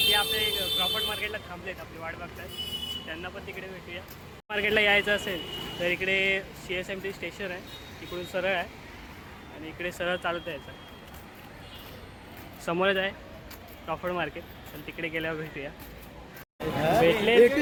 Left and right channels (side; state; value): both; identical; correlation 1.00